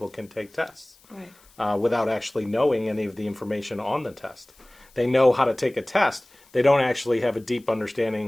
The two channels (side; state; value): left; noise; hiss, 29 dB below the sound